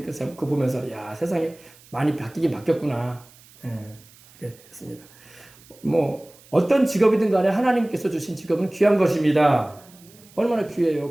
그거 보면서 야 세상이 많이 바뀌긴 바뀌었구나. 이렇게 했습니다. 뭐 어떤 직업이든 간에 하나님께서 주신 직업은 귀한 것입니다. 얼마나 귀해요.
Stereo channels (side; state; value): right; noise; hiss, 25 dB below the sound